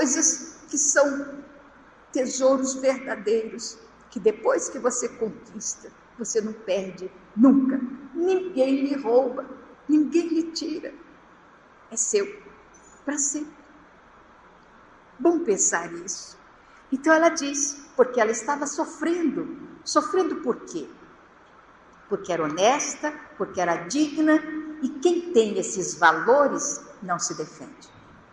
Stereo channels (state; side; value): identical; both; correlation 1.00